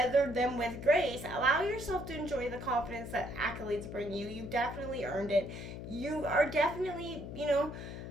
them with grace. Allow yourself to enjoy the confidence that accolades bring you. You definitely earned it. You are definitely, you know,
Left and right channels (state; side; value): noise; left; hum, 9 dB below the sound